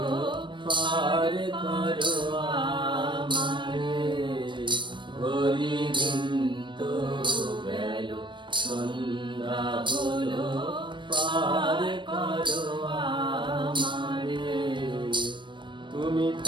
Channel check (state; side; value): late; left; 0.23 ms